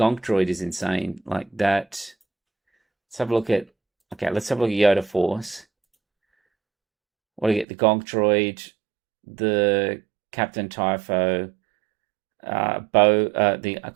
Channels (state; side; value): drops out; left; at 7.7 s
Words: Droid is insane. Like that. Let's have a look at. Okay, let's have a look at Yoda Force. What do you get? The Gonk Droid, the Captain Typho, Bo, the